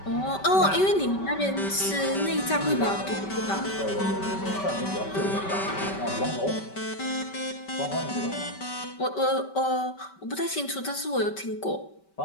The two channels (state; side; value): late; right; 5.2 ms